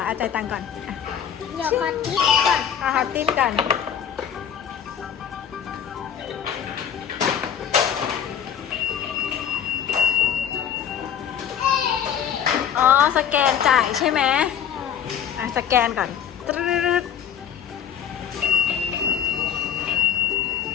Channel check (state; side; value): quieter; right; 8.8 dB